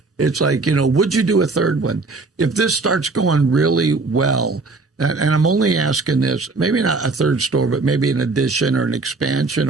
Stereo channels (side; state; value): left; quieter; 3.7 dB